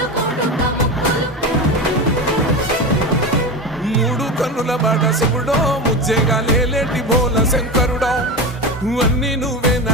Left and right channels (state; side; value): normal; both; correlation 0.23